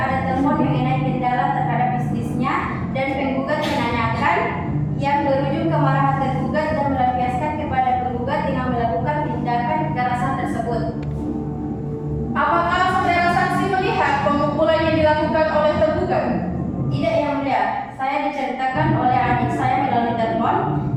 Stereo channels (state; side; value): identical; both; correlation 1.00